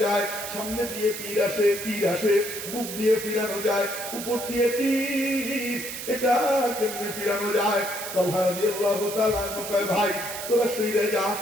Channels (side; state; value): right; noise; hiss, 8 dB below the sound